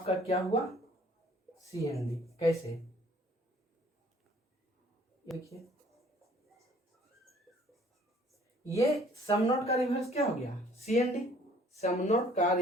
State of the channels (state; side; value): normal; both; correlation 0.56